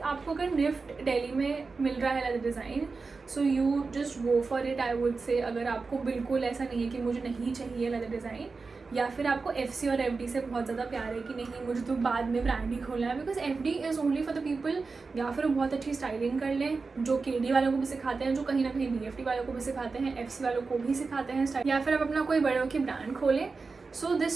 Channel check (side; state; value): left; quieter; 4.3 dB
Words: आपको अगर निफ्ट दिल्ली में मिल रहा है leather design, so you just go for it. I would say अगर आपको बिल्कुल ऐसा नहीं है कि मुझे नहीं चाहिए लेदर डिज़ाइन, या फिर आपको FC और FD से बहुत ज़्यादा प्यार है कि नहीं मुझे तो बाद में ब्रांड ही खोलना है, because FD is only for the people, या फिर बहुत अच्छी स्टाइलिंग कर लें जो KD वालों को भी सिखाते हैं, जो कहीं ना कहीं BFD वालों को भी सिखाते हैं, FC वालों को भी सिखाते हैं स्टाइल, या फिर आप अपना कोई बड़े की ब्रांड खोलें. सो